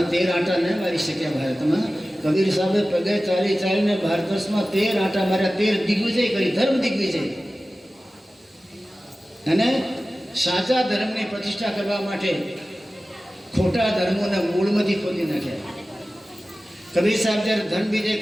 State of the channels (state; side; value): normal; both; correlation 0.96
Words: 13 આંટા ન મારી શક્યા ભારતમાં. કબીર સાહેબે પગે ચાલી ચાલીને ભારત વર્ષમાં 13 આંટા માર્યા, 13 દિગ્વિજય કરી, ધર્મ દિગ્વિજય. અને સાચા ધર્મની પ્રતિષ્ઠા કરવા માટે ખોટા ધર્મોના મૂળમાંથી ખોદી નાખ્યા. કબીર સાહેબ જ્યારે ધર્મ વિજય